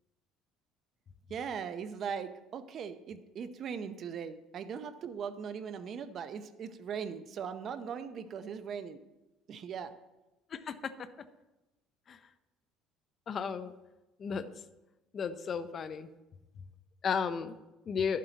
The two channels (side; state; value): both; normal; correlation 0.67